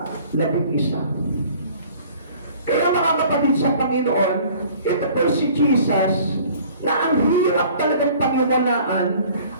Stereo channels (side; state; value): both; inverted; correlation -0.51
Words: 11. Kaya mga kapatid sa Panginoon, ito po si Jesus, na ang hirap talagang paniwalaan.